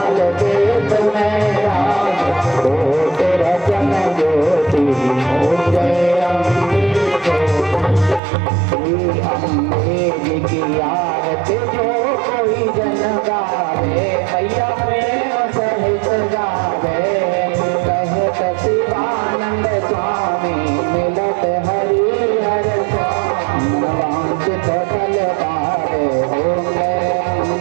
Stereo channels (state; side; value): drops out; left; at 8.2 s